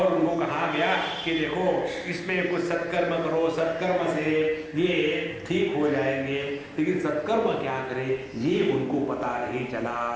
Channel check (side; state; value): both; identical; correlation 1.00